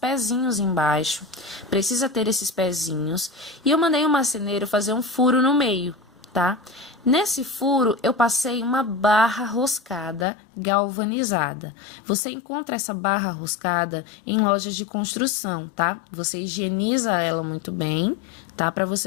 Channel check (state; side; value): drops out; right; at 10.2 s